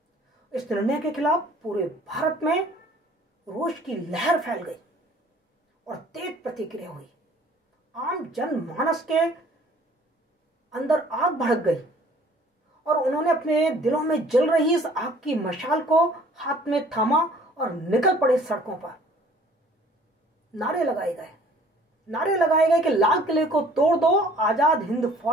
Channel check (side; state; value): both; normal; correlation 0.54